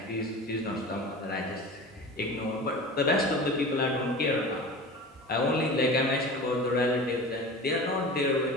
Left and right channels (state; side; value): normal; both; correlation 0.34